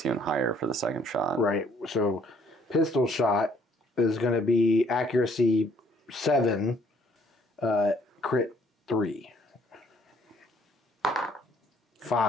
even higher for the second shot. Right. So pistol shot is going to be accuracy 7, crit 3.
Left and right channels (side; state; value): both; normal; correlation 0.63